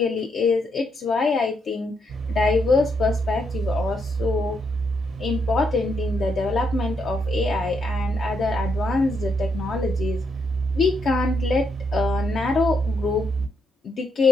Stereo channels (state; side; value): normal; both; correlation 0.78